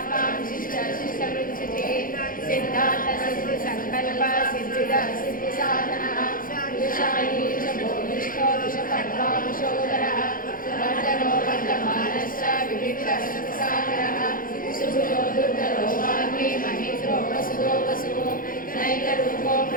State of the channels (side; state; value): right; late; 0.40 ms